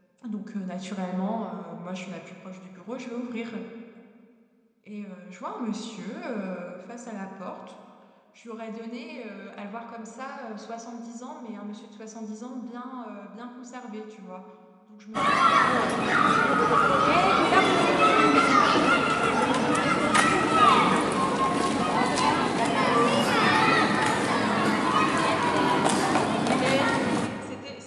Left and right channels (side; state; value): both; identical; correlation 1.00